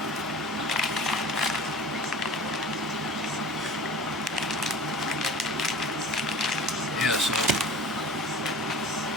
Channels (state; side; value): normal; both; correlation 0.39